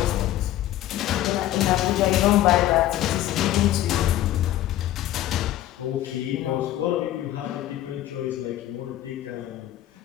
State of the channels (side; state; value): right; quieter; 13.5 dB